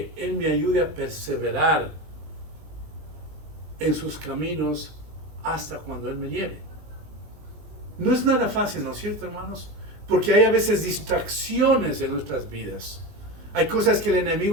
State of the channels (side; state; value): left; late; 19 ms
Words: Él me ayude a perseverar en sus caminos hasta cuando Él me lleve. No es nada fácil, ¿no es cierto, hermanos? Porque hay a veces distracciones en nuestras vidas. Hay cosas que el